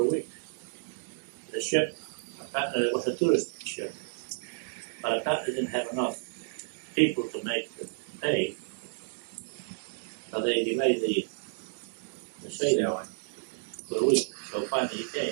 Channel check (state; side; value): silent; left; digital silence